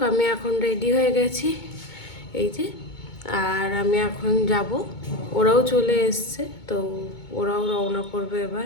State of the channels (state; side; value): late; right; 2.2 ms